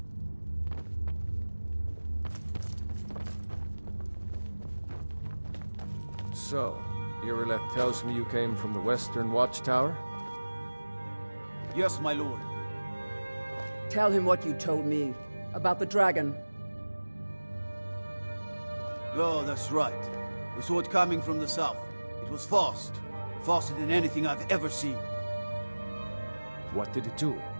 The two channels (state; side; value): inverted; both; correlation -1.00